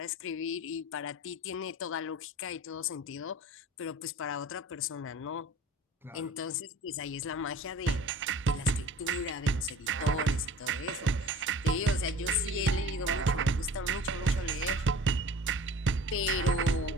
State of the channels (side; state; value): both; normal; correlation 0.43